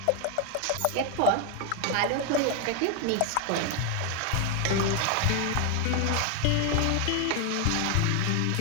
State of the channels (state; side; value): different; both; correlation 0.00